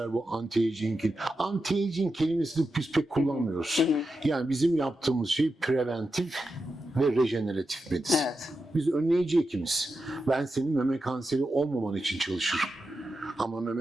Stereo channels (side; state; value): both; normal; correlation 0.89